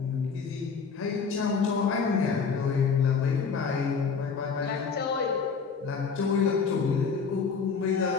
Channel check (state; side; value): quieter; right; 5.6 dB